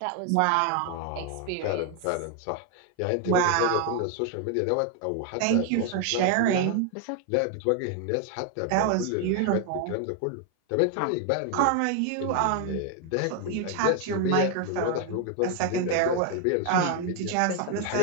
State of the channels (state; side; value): different; both; correlation 0.01